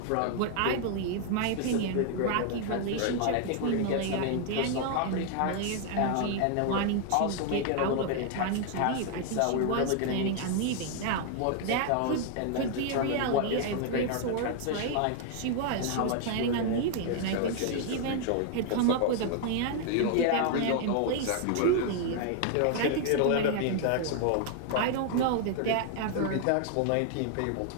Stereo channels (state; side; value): different; both; correlation 0.00